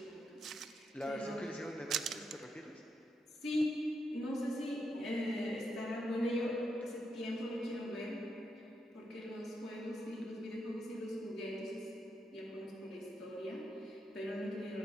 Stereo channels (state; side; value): normal; both; correlation 0.82